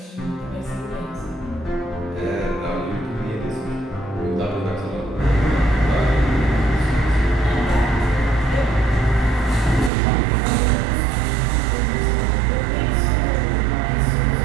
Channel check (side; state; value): left; drops out; at 9.9 s